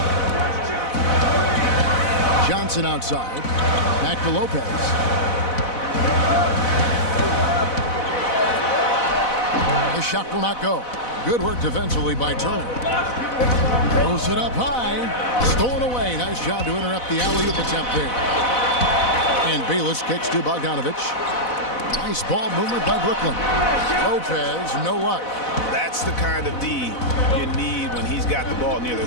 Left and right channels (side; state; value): right; late; 4.0 ms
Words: Johnson outside. Back to Lopez. The shot will not go. Good work defensively by Turner. Throws it up high. Stolen away. Nice job to interrupt the alley-oop attempt there. And Bayless kicks to Bogdanovich. Nice ball movement by Brooklyn. Lopez, no luck. That's the kind of D you need when he's got the ball near the